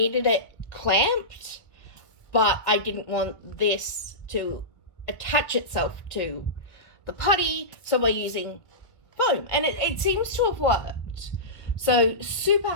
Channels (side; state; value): right; late; 1.9 ms